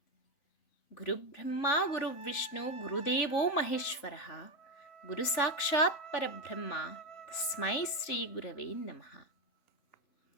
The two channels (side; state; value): right; late; 3.4 ms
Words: గురు బ్రహ్మ గురు విష్ణు గురుదేవో మహేశ్వర గురు సాక్షాత్ పరబ్రహ్మ తస్మై శ్రీ గురవే నమః.